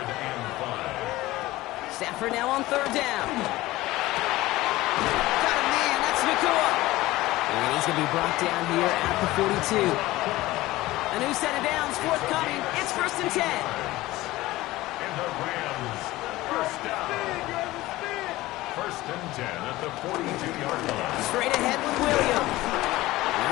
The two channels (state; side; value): quieter; right; 17.9 dB